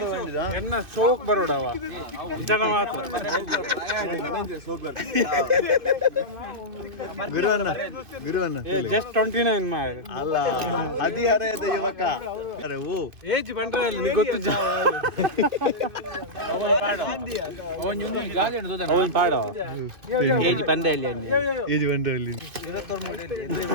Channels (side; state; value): left; late; 2.5 ms